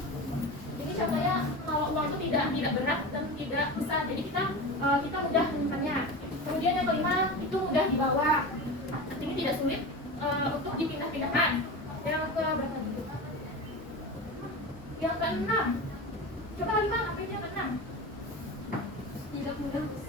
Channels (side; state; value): both; normal; correlation 0.27